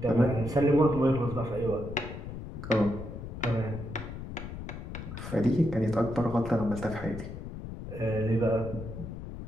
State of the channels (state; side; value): noise; left; rumble, 9 dB below the sound